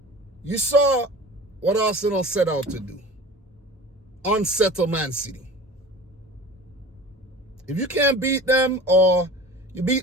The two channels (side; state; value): both; normal; correlation 0.39